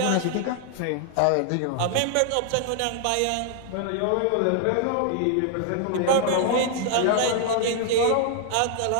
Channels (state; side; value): different; both; correlation 0.00